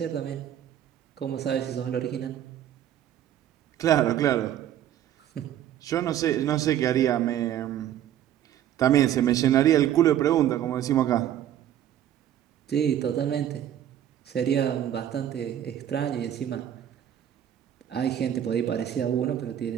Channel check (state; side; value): quieter; left; 11.0 dB